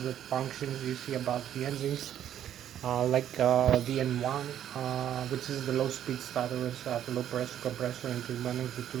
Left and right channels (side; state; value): left; quieter; 10.6 dB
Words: functions you see about the engines. Like the N1, which is the low speed starter at low pressure compressor and turbine, the